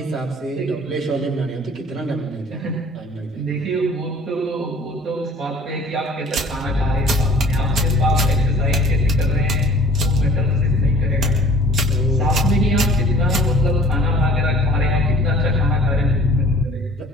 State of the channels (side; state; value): both; normal; correlation 0.50